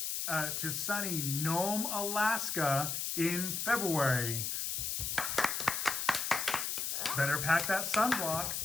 Nome, Alaska in February. Better pack that sunblock.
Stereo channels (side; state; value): left; noise; hiss, 2 dB below the sound